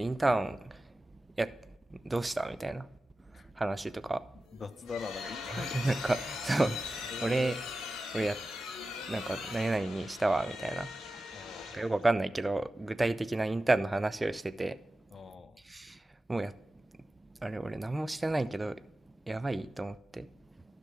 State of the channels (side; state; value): both; normal; correlation 0.94